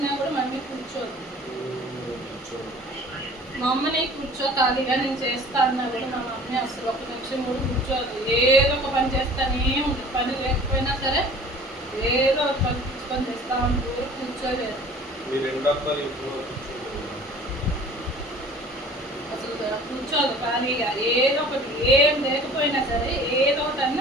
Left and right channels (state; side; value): normal; both; correlation 0.46